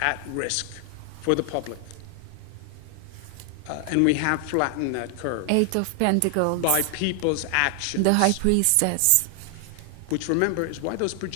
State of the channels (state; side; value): different; both; correlation 0.00